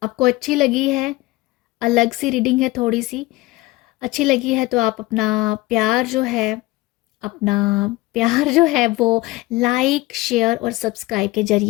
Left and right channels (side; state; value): right; quieter; 19.9 dB